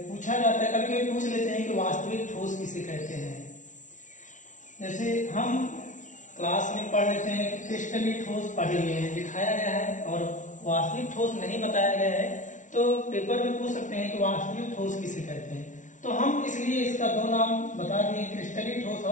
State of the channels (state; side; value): late; right; 0.37 ms